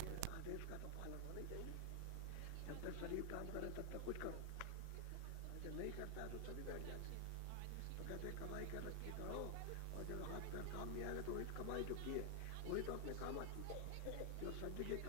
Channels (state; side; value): different; both; correlation 0.00